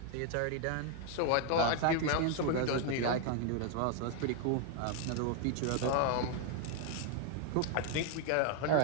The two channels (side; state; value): both; different; correlation 0.00